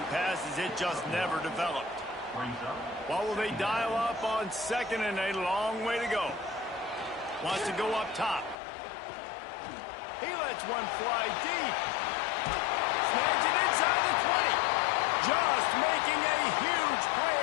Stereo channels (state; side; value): drops out; right; at 8.6 s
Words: pass, as it just never developed. What will they dial up on 2nd and a long way to go? Wants to go up top. He lets one fly deep. Snags it inside the 20. Just making a huge play,